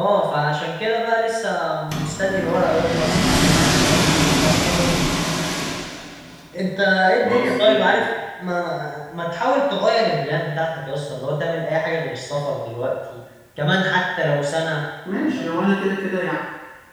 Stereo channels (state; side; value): identical; both; correlation 1.00